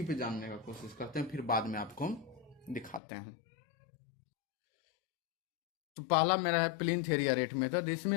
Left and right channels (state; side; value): drops out; right; at 3.0 s